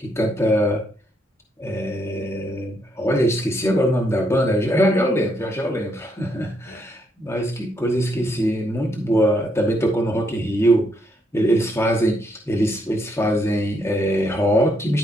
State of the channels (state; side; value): normal; both; correlation 0.75